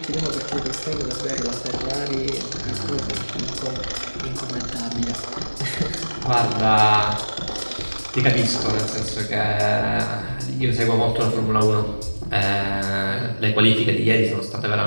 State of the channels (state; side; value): inverted; both; correlation -1.00